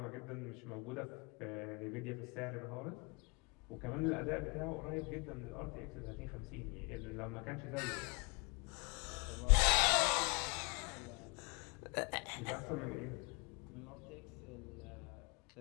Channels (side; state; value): right; quieter; 31.1 dB